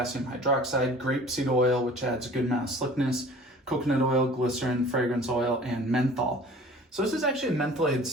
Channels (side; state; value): both; normal; correlation 0.46